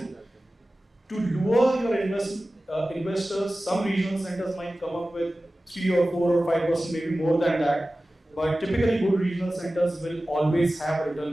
To lure your investors, some regional centers might come up with 3 or 4 or 5%, maybe more than that. But typically good regional centers will always have a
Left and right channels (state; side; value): normal; both; correlation 0.96